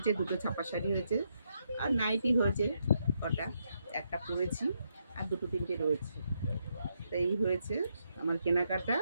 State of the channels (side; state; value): both; inverted; correlation -0.79